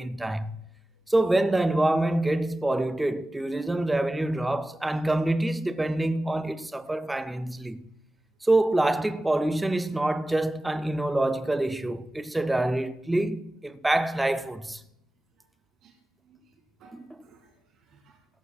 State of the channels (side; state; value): both; normal; correlation 0.96